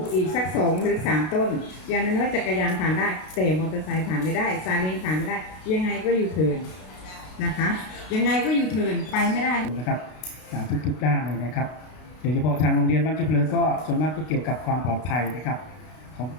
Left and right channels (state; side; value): late; right; 32 ms